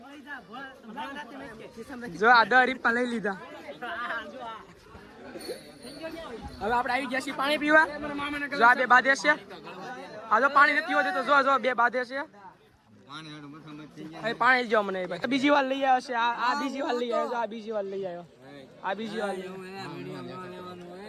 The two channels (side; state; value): both; identical; correlation 1.00